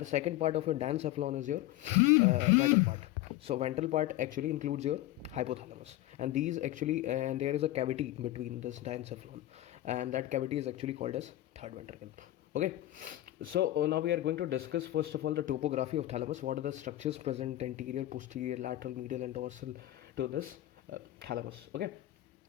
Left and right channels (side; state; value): right; quieter; 15.1 dB